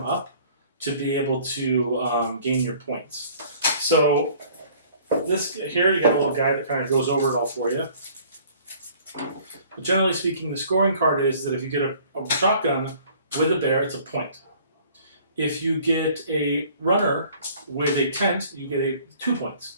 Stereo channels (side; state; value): both; inverted; correlation -0.54